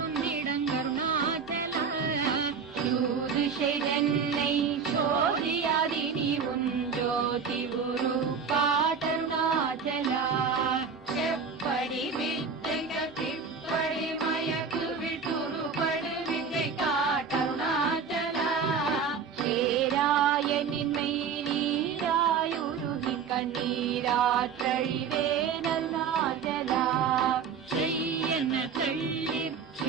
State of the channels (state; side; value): quieter; left; 6.0 dB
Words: யூதிஷை சோதியாதி நீ உன் ஜோதி குரு காட்டருணாச்சலா. செப்படி வித்தைக திப்படி மயக்கு விட்டுருபடு வித்தை காட்டருணாச்சலா. சேராயனின்மை நீராயுருகி கண்ணீராற்றழிவேன் அருணாச்சலா. செய்யன தள்ளீர்